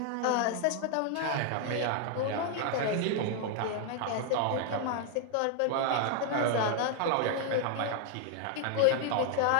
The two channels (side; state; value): both; different; correlation 0.00